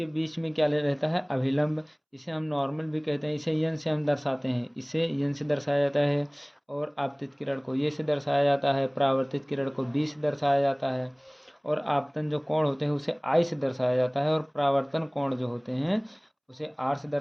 बीच में क्या ले रहता है? अभिलंब। इसे हम नॉर्मल भी कहते हैं, इसे यन से हम दर्शाते हैं, इसे यन से दर्शाया जाता है। और आपतित किरण को ये से दर्शाया जाता है, परावर्तित किरण को बी से दर्शाया जाता है, और आपतन जो कोण होते हैं उसे आई से दर्शाया जाता है, और परावर्तन कोण जो होते हैं उसे आर से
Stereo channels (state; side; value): identical; both; correlation 1.00